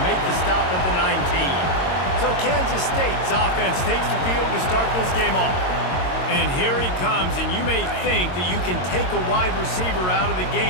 make the stop at the 19. So Kansas State's offense takes the field to start this game off. And here he comes, and you may think that you can take a wide receiver out of the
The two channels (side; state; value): right; late; 22 ms